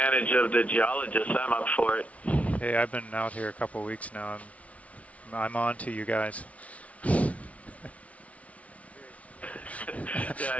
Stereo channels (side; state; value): right; late; 0.066 ms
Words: of the geologists. I'm up for it. Hey, I've been out here a couple weeks now. I'm on to you guys. Yeah,